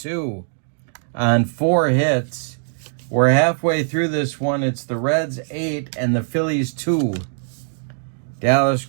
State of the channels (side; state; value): left; silent; digital silence